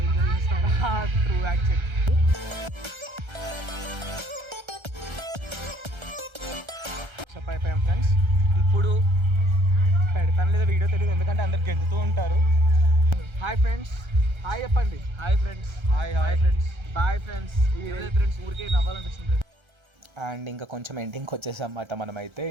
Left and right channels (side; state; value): left; late; 1.3 ms